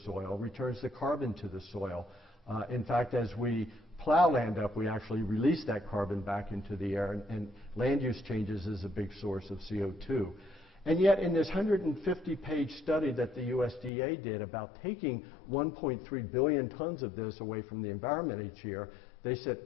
returns the carbon to the soil. In fact, as we plow land up, we actually release that carbon back into the air, and land use changes is a big source of CO2. And yet in this 150-page study that the USDA did about taking 1.3 billion tons of this away from the environment each year, they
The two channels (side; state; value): right; drops out; at 13.9 s